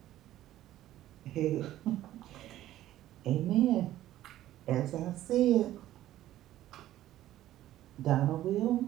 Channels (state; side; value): quieter; left; 13.7 dB